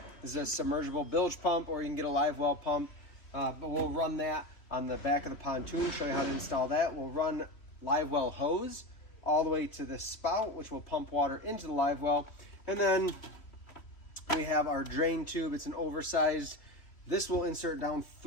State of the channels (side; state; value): right; late; 3.1 ms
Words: This is a submergible bilge pump, or you can get a Livewell pump, but we'll run that on the back of the pontoon, show you how to install that. We'll run Livewell hose all the way to the spout, which will pump water into the Livewell, and then we have our drain tube. It's an oversized. This will insert down